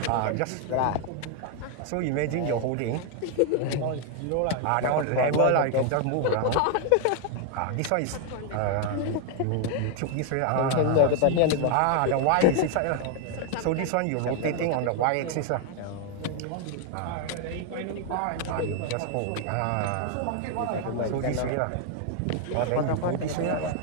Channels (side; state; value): both; different; correlation 0.00